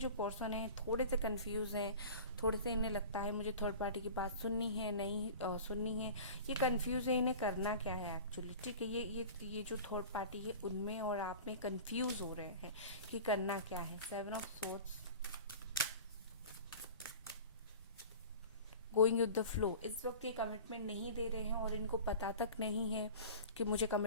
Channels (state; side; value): inverted; both; correlation -0.38